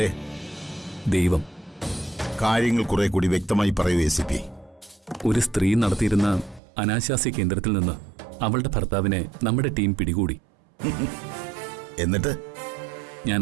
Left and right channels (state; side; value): drops out; left; at 6.6 s